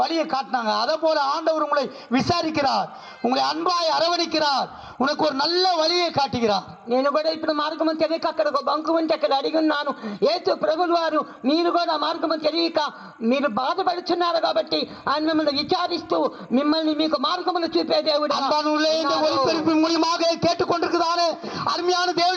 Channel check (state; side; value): identical; both; correlation 1.00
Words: வழியை காட்டினாங்க. அதே போல ஆண்டவர் உங்களை விசாரிக்கிறார், உங்களை அன்பாய் அரவணைக்கிறார், உனக்கு ஒரு நல்ல வழியை காட்டுகிறார். నేను కూడా ఇప్పుడు మార్గము తెలియక అక్కడ ఒక బంకు ఉంటే అక్కడ అడిగి ఉన్నాను. యేసు ప్రభువు వారు మీరు కూడా మార్గము తెలియక మీరు బాధపడుచున్నారు కాబట్టి ఆయన మిమ్మల్ని విచారిస్తూ మిమ్మల్ని మీకు మార్గమును చూపే దేవుడు. அன்பானுள்ளே இந்த ஒளிபரப்பின் மூலமாக கேட்டுக்கொண்டிருக்கிறாரு அருமையான